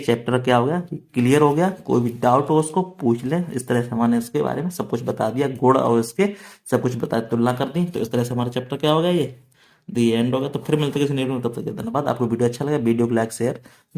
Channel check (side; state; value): both; identical; correlation 1.00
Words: क्या हो गया, क्लियर हो गया। कोई भी डाउट हो उसको पूछ ले। इस तरह से हमने इसके बारे में सब कुछ बता दिया, गुण और इसके सब कुछ बता, तुलना कर दी। तो इस तरह से हमारा चैप्टर क्या हो गया, ये दी एंड हो गया। तो फिर मिलते हैं किसी नए वीडियो में, तब तक के धन्यवाद। आपको वीडियो अच्छा लगा वीडियो को लाइक शेयर